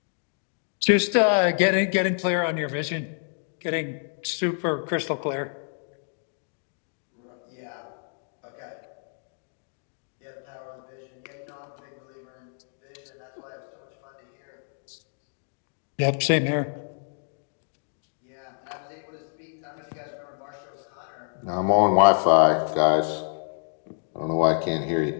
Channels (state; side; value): silent; right; digital silence